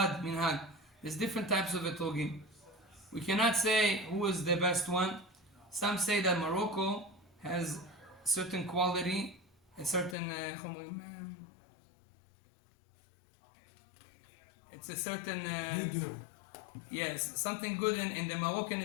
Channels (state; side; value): drops out; right; at 10.2 s